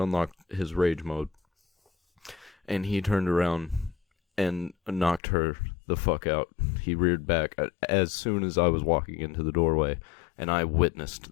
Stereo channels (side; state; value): right; drops out; at 5.2 s